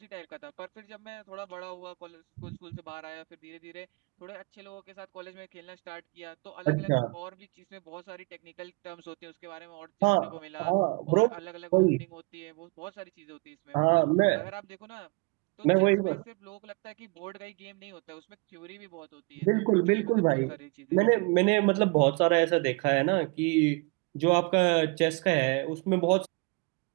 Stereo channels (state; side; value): quieter; left; 29.3 dB